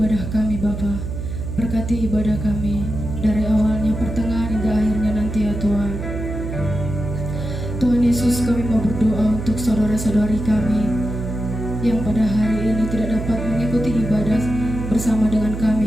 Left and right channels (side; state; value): right; noise; hum, 6 dB below the sound